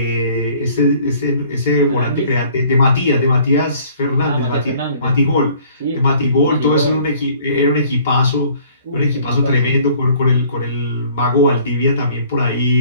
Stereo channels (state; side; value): inverted; both; correlation -0.56